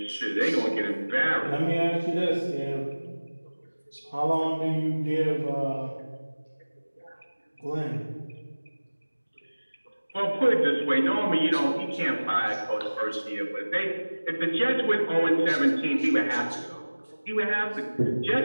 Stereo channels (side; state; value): both; inverted; correlation -1.00